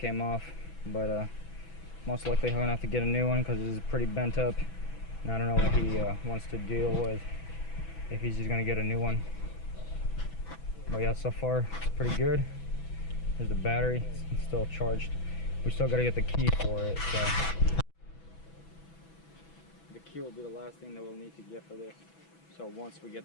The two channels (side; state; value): right; late; 6.1 ms